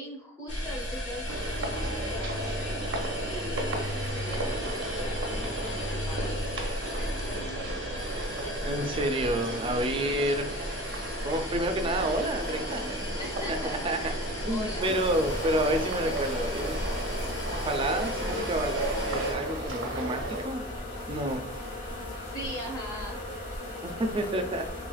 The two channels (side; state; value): both; normal; correlation 0.37